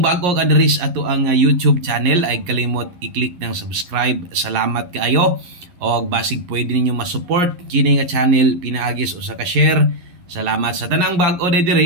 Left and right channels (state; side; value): late; left; 11 ms